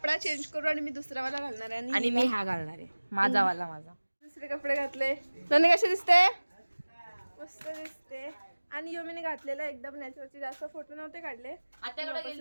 चेंज करू आणि मी दुसरा वाला घालणार आहे. आणि मी हा घालणार आहे, माझा वाला. माझा दुसरे कपडे घातले. नन्हे कसे दिसते? मस्त दिसते. आणि योमीने घातलेला एकदम नॅचरलचे जास्त फोटो नव्हते काढले. आत्याकडे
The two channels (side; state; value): both; inverted; correlation -1.00